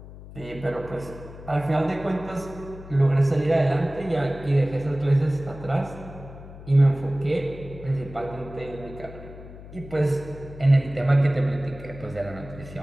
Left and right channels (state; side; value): noise; left; hum, 15 dB below the sound